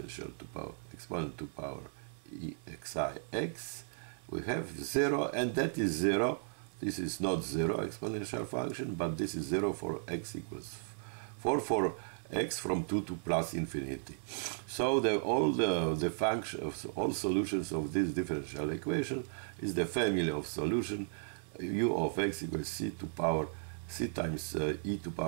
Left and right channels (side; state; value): left; silent; 54 dB below the other